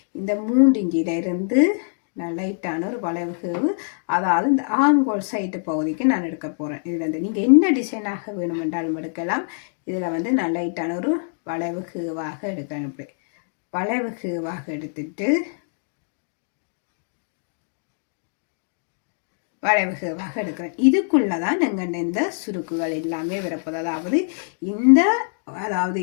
இந்த 3 இன்ச்சில் இருந்து நான் லைட்டான ஒரு வளைவு, அதாவது இந்த ஆங்கோல் சைட்டு பகுதிக்கு நான் எடுக்க போகிறேன். இதில் நீங்கள் என்ன டிசைனாக வேணுமென்றாலும் எடுக்கலாம். இதில் வந்து நான் லைட்டான ஒரு வளைவுவாக எடுக்கிறேன். இப்படி வளைவுவாக எடுத்துட்டு வளைவுவாக எடுக்கிறேன். இதுக்குள்ளே தான் எங்கள் இந்த சுருக்குகள் எல்லாமே வரப்போகுது. அதாவது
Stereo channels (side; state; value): right; silent; digital silence